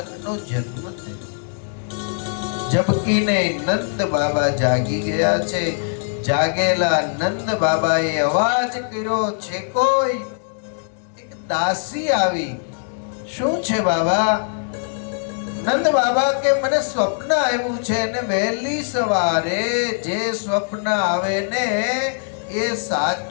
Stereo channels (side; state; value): right; silent; digital silence